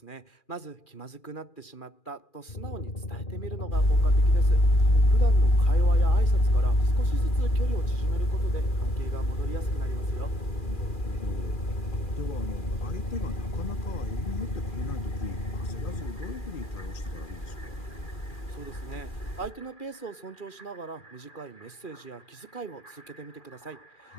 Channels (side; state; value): right; late; 2.4 ms